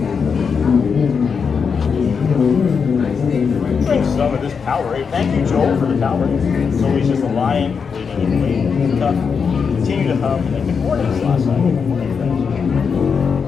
Drink some of this Powerade. Thank you, Joel, for the Powerade. It's always just a lion waiting and waiting. Tough. Continue to hum. And good morning, Slasa. Good morning, friends.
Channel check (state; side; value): quieter; right; 6.0 dB